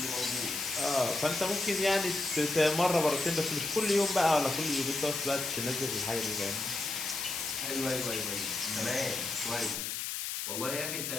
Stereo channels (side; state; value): left; noise; hiss, 3 dB below the sound